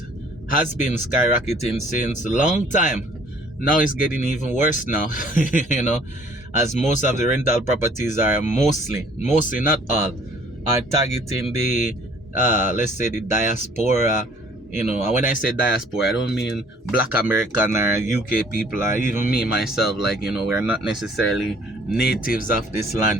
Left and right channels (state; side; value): normal; both; correlation 0.56